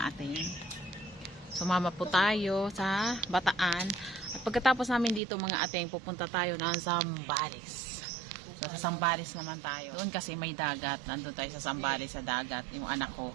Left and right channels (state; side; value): drops out; left; at 5.2 s